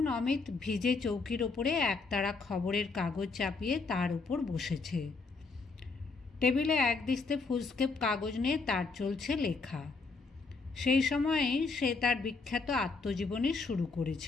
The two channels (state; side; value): quieter; right; 4.2 dB